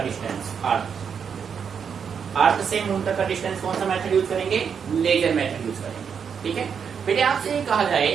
डिस्टेंस, अर्थ से मून तक का डिस्टेंस कौन सा मेथड यूज करेंगे, लेजर मेथड यूज करेंगे। ठीक है बेटे, आपसे कहा जाए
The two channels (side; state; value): left; quieter; 6.9 dB